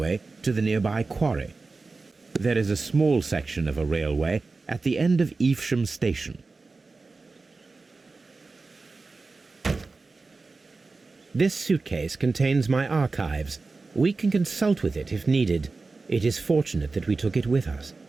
to the nearby quarry. There is a small section of a railway at the end of Evesham station. This suitcase contains my archives. We can consult with it if needed. It is fortunate that we took it with us.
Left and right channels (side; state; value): left; quieter; 3.9 dB